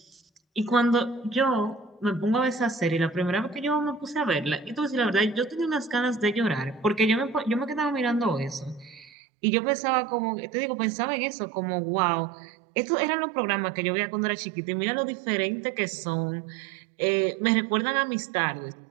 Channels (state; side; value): drops out; left; at 9.1 s